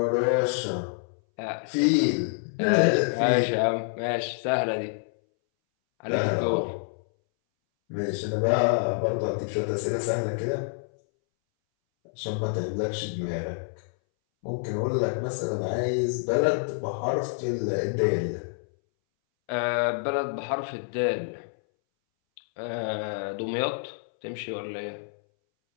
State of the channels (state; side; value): silent; right; 60 dB below the other